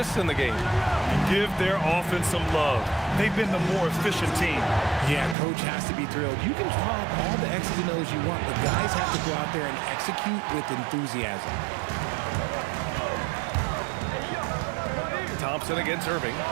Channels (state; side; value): drops out; left; at 5.4 s